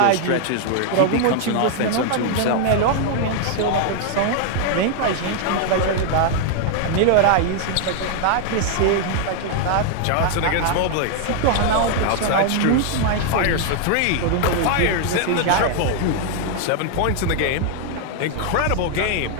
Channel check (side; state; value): both; different; correlation 0.00